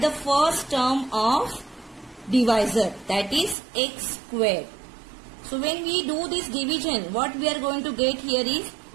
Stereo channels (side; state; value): left; drops out; at 3.6 s